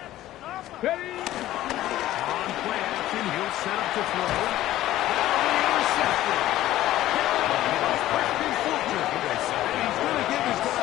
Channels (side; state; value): right; quieter; 14.5 dB